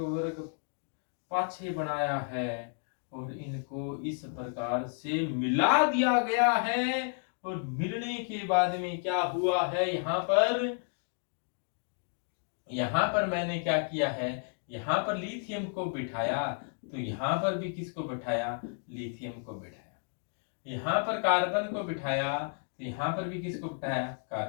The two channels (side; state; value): right; silent; 56 dB below the other